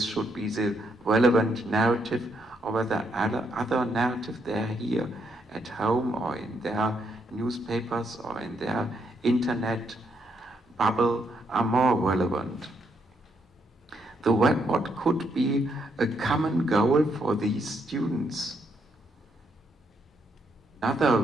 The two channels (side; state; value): both; normal; correlation 0.76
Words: should be the relevant narrative or whether other narrative they hear at home or in their newspapers or in their internet bubble are more relevant. What could be a common goal for these students? Another